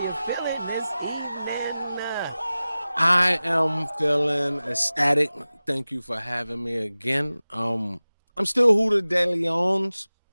feeling this evening? I am feeling ecstatic. Thank you for having me again. I'm still Huda De Leon's.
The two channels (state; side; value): inverted; both; correlation -0.97